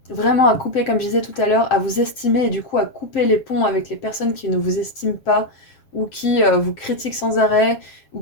vraiment à couper, comme je disais tout à l'heure, à vous estimer et du coup à couper les ponts avec les personnes qui ne vous estiment pas ou qui vous critiquent sans arrêt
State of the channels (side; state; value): right; late; 7.3 ms